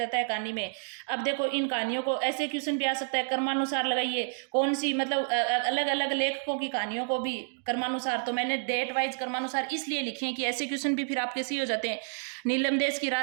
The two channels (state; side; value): silent; left; digital silence